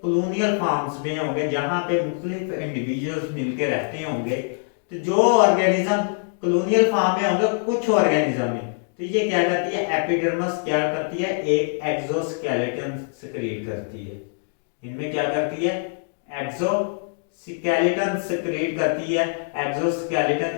कॉलोनियल फार्म्स में होंगे, जहां पे मुख्तलिफ इंडिविजुअल्स मिलकर रहते होंगे, तो जो ऑर्गेनिज्म कॉलोनियल फार्म में होंगे कुछ ऑर्गेनिज्म में, तो ये क्या करती है, एपिडर्मिस क्या करती है, एक एक्सोस्केलेटन सिक्रीट करती है। इनमें क्या करती है, एक्सोस्केलेटन सिक्रीट करती है।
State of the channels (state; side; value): silent; right; digital silence